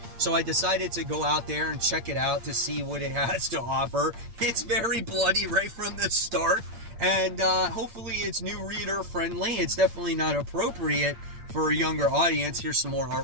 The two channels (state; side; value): late; left; 8.6 ms